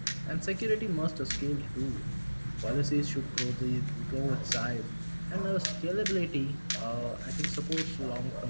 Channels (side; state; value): both; inverted; correlation -1.00